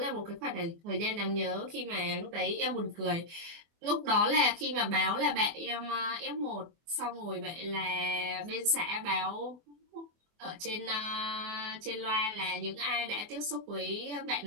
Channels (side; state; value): left; late; 24 ms